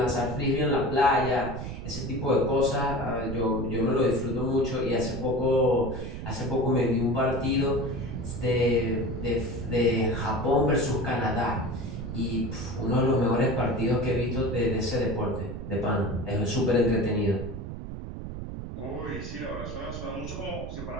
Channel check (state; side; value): noise; right; rumble, 8 dB below the sound